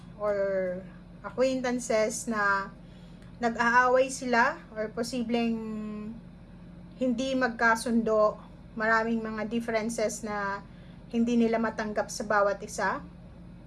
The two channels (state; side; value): identical; both; correlation 1.00